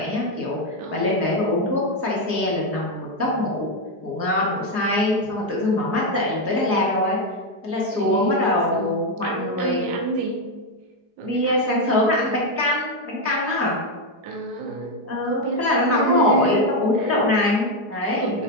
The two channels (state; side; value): late; left; 4.9 ms